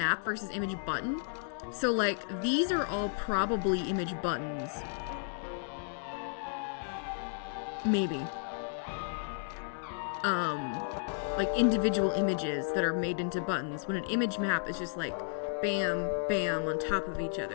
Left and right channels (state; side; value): silent; right; digital silence